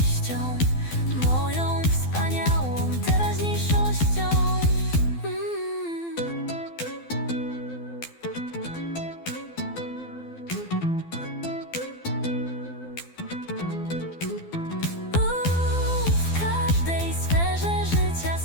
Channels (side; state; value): right; late; 12 ms